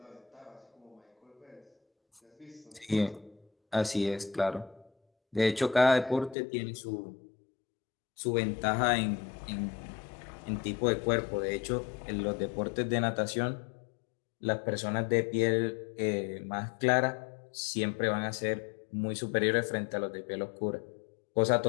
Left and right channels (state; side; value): drops out; right; at 6.4 s